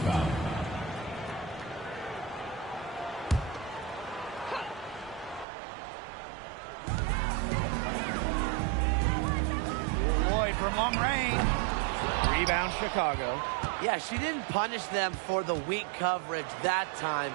Lloyd from long range. Rebound Chicago. Yeah, she didn't punish them for the weak coverage that time,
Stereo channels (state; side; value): drops out; left; at 5.5 s